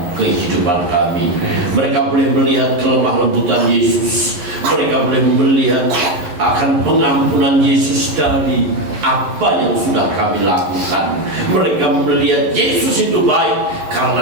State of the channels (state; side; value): late; left; 11 ms